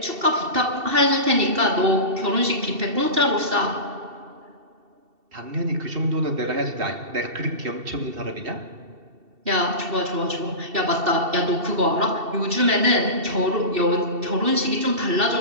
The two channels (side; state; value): left; late; 2.7 ms